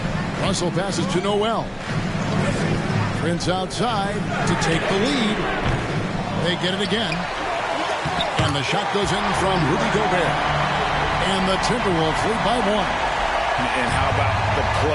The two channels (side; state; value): both; identical; correlation 1.00